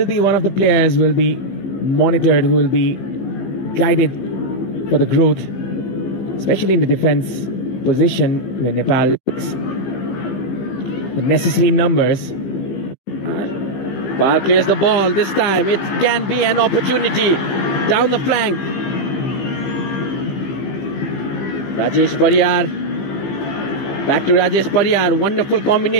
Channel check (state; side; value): late; right; 15 ms